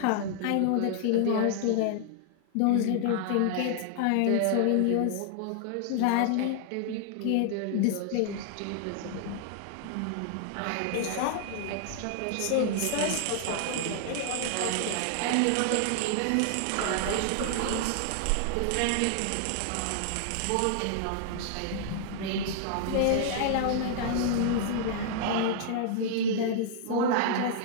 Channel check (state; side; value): different; both; correlation -0.01